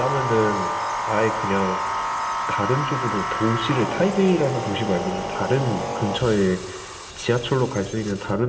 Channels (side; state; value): both; identical; correlation 1.00